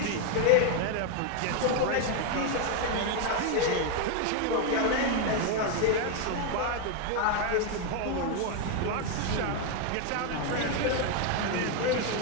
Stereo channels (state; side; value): different; both; correlation 0.01